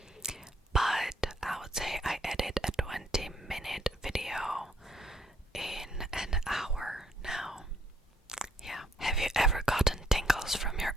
But I would say I edit a 20-minute video in an hour now. Yeah. Have you ever gotten tingles from your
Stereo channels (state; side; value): normal; both; correlation 0.70